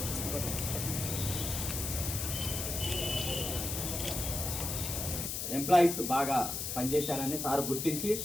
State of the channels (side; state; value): left; noise; hiss, 3 dB below the sound